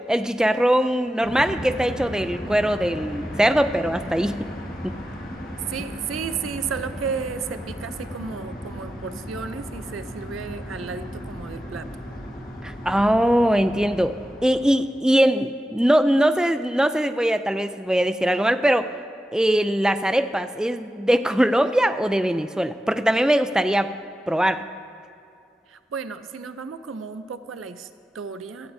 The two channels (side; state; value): both; normal; correlation 0.91